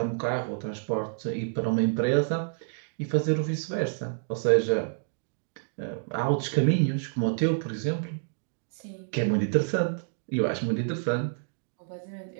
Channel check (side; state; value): left; silent; digital silence